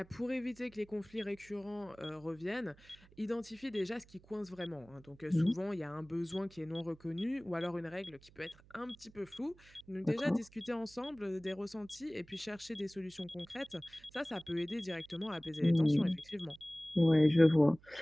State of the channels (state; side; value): noise; right; hum, 25 dB below the sound